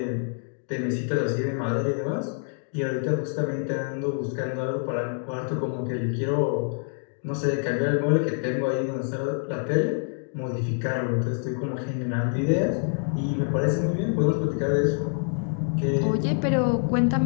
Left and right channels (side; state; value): right; silent; 61 dB below the other